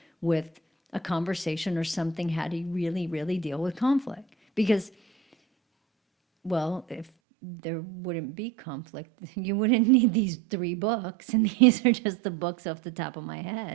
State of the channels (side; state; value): left; drops out; at 7.1 s